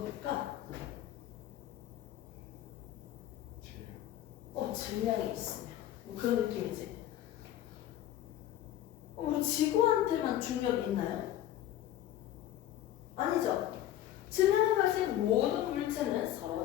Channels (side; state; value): right; quieter; 12.5 dB